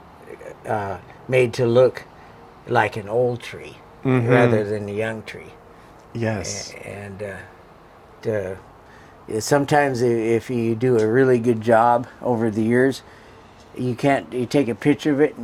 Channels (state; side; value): identical; both; correlation 1.00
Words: made to look like an old tree rather than a young tree. Yes. And sometimes if you do a really good job over the years, you take a picture of it